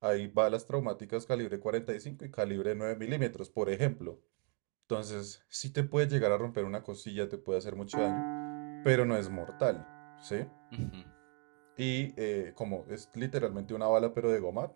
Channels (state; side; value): quieter; left; 37.7 dB